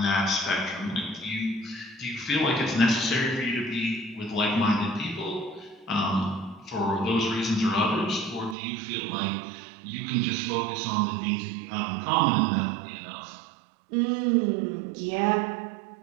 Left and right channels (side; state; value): left; drops out; at 8.6 s